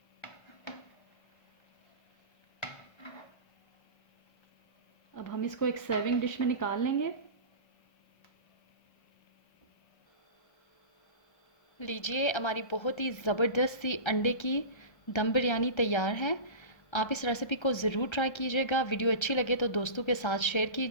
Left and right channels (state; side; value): late; right; 1.3 ms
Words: अब हम इसको एक सर्विंग डिश में निकाल लेंगे। लीजिए हमारी बहुत ही ज़बरदस्त सी अंडे की दम बिरयानी तैयार है। आप इस रेसिपी को ज़रूर ट्राई कीजिएगा। वीडियो अच्छी लगे तो दोस्तों के साथ शेयर